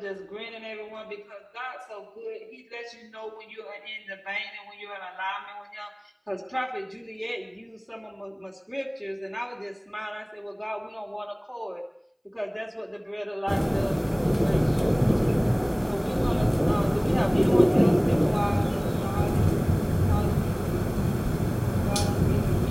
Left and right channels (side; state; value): both; identical; correlation 1.00